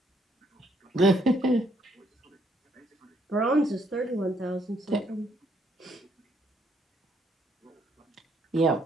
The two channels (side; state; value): both; normal; correlation 0.70